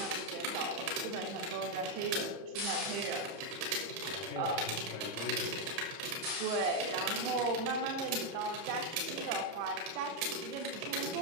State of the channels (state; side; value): late; left; 30 ms